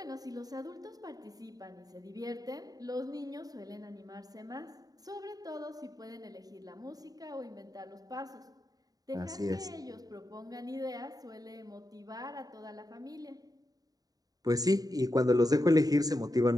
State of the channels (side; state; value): left; late; 0.18 ms